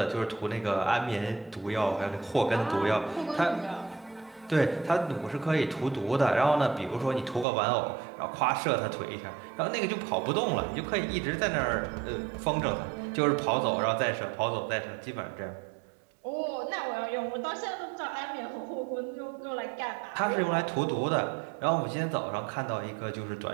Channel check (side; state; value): left; drops out; at 7.5 s